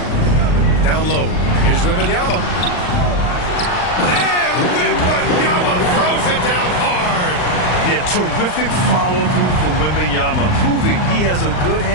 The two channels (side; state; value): right; late; 39 ms